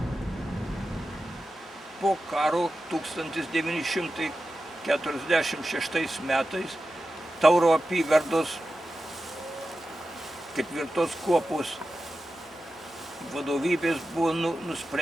Po karo 1946 metais Tauro apygardos 4 kuopos vadovybės buvo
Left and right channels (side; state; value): both; normal; correlation 0.92